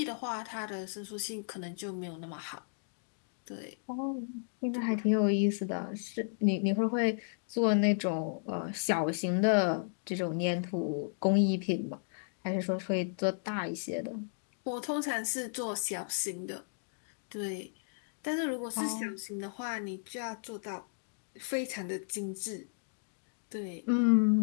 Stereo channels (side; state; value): right; silent; digital silence